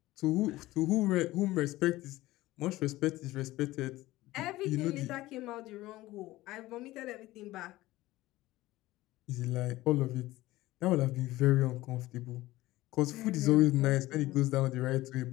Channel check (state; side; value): quieter; right; 17.6 dB